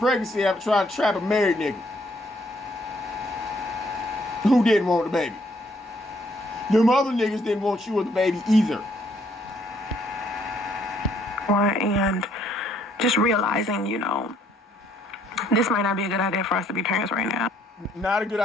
after trying to trap a married nigga who didn't want the baby. Them other niggas didn't want you or the baby either. And just realizing, this might not be a good idea for us to be parents right now. Not a good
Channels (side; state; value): both; normal; correlation 0.67